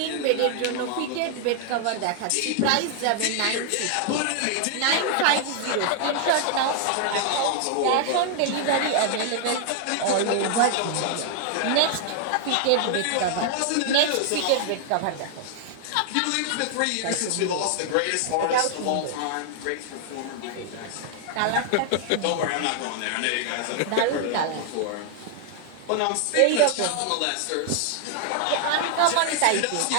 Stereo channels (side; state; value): both; different; correlation 0.00